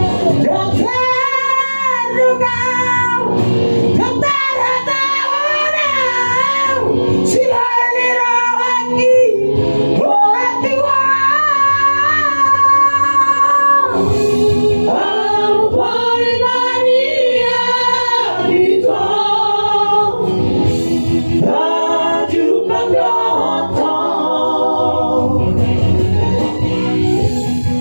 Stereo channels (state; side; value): inverted; both; correlation -1.00